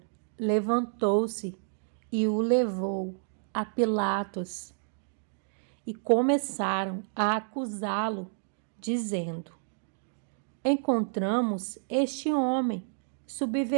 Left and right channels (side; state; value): left; silent; digital silence